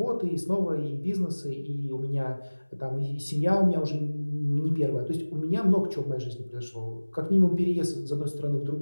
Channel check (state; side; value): inverted; both; correlation -1.00